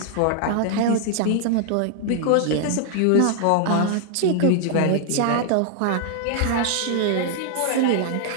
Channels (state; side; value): different; both; correlation 0.00